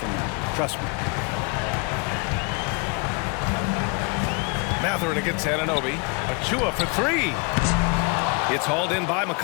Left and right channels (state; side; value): quieter; right; 33.4 dB